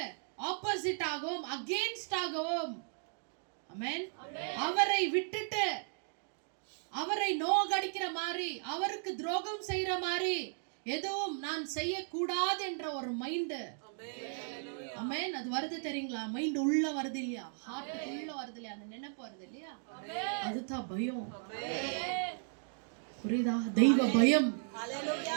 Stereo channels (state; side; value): silent; left; digital silence